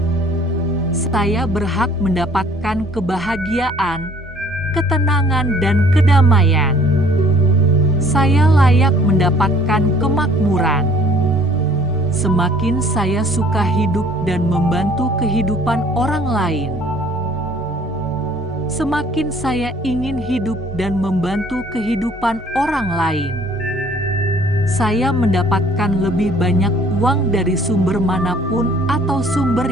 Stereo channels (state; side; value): normal; both; correlation 0.55